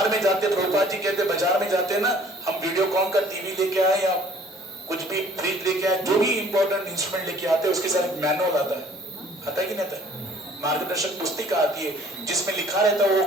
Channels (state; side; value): normal; both; correlation 0.54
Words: में जाते, प्रभुपाद जी कहते बाजार में जाते ना, हम वीडियोकॉन का टीवी लेके आए या कुछ भी फ्रिज लेके आए, जो भी इंपॉर्टेंट इंस्ट्रूमेंट लेके आते हैं, उसके साथ एक मैनुअल आता है कि नहीं आता है? मार्गदर्शक पुस्तिका आती है जिसमें लिखा रहता है वो